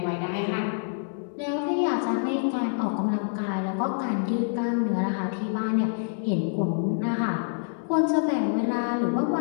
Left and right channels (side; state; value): right; silent; digital silence